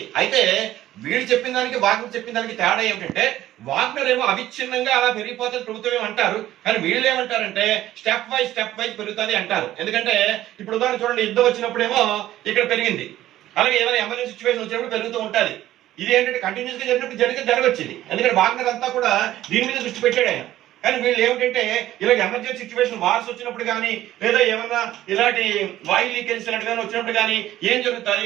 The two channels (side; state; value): left; quieter; 13.9 dB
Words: అయితే వీళ్ళు చెప్పిన దానికి వాగ్నర్ చెప్పిన దానికి తేడా ఏమిటంటే వాగ్నర్ ఏమో అవిచ్ఛిన్నంగా అలా పెరిగిపోతుంది ప్రభుత్వం ఏమంటారు, కానీ వీళ్ళు ఏమంటారంటే స్టెప్ వైజ్ పెరుగుతుంది అంటారు. ఎందుకంటే ఇప్పుడు ఉదాహరణ చూడండి, యుద్ధం వచ్చినప్పుడేమో ఇక్కడ పెరిగింది, అలాగే ఏమైనా ఎమర్జెన్సీ సిచ్యువేషన్ వచ్చినప్పుడు పెరుగుతూ ఉంటుంది. ఇది ఏంటంటే కంటిన్యూస్ గా జరగొచ్చింది, ఎందుకంటే వాగ్నర్ అంతా కూడా దీని మీద దృష్టి పెట్టాడు ఆయన. కానీ వీళ్ళు ఏమిటంటే ఇలాగ ఎమర్జెన్సీ సిచ్యువేషన్ వార్స్ వచ్చినప్పుడు కానీ లేదా ఏమన్నా ఇలాంటి వాయు లీకేజ్ కానీ వచ్చినప్పుడు కానీ ఏం